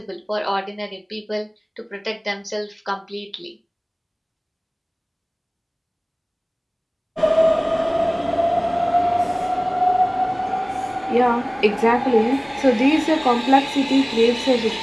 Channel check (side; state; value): both; identical; correlation 1.00